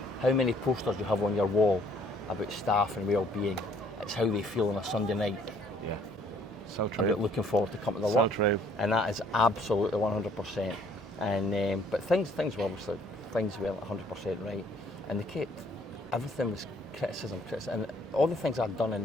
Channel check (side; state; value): both; normal; correlation 0.61